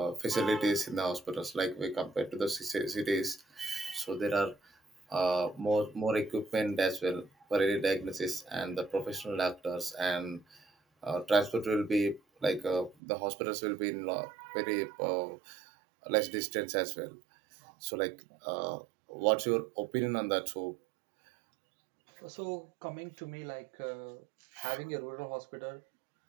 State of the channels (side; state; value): left; drops out; at 13.0 s